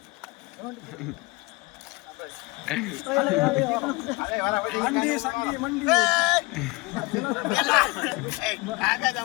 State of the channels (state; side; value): quieter; right; 24.7 dB